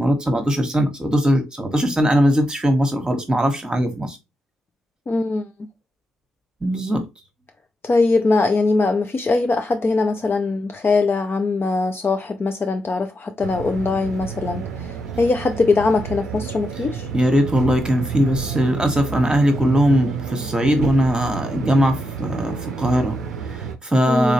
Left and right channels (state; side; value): normal; both; correlation 0.85